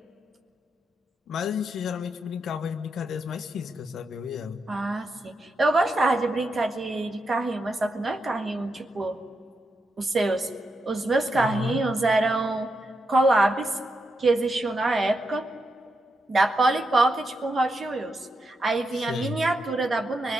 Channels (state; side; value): normal; both; correlation 0.85